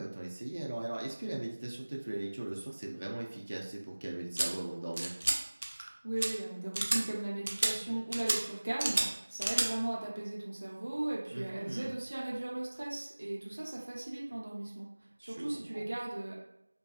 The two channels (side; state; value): both; inverted; correlation -1.00